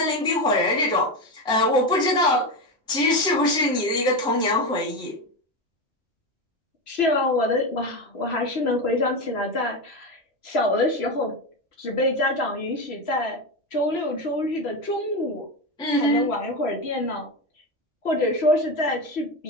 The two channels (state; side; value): normal; both; correlation 0.16